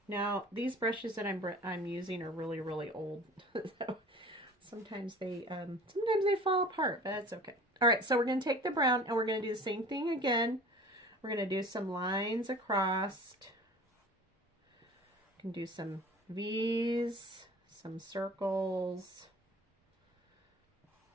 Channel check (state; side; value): normal; both; correlation 0.43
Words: Now, these brushes that I'm using are really old. So sometimes they fall apart, but that's okay. All right, so we're going to take the brown and we're going to do the same thing again. We're going to do some lines across. You can do some V's, some circles.